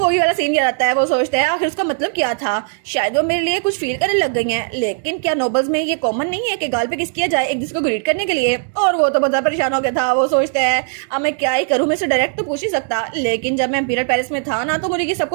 वाला सीन याद आता है। वो सोचता है आखिर उसका मतलब क्या था, शायद वो मेरे लिए कुछ फील करने लग गई हैं, लेकिन क्या नोबल्स में ये कॉमन नहीं है कि गाल पे किस किया जाए एक दूसरे को ग्रीट करने के लिए। और वो तो बहुत ज्यादा परेशान हो गया था। वो सोचता है अब मैं क्या ही करूं, मैं इसे डायरेक्ट तो पूछ ही सकता, लेकिन जब मैं इंपीरियल पैलेस में था ना तो मुझे ये सब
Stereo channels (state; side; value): silent; left; 58 dB below the other